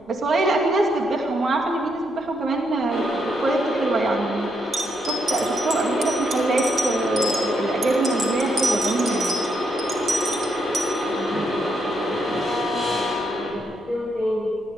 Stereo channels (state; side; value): noise; left; rumble, 29 dB below the sound